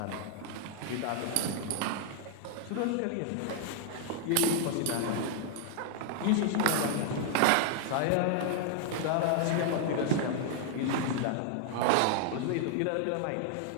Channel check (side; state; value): both; different; correlation 0.00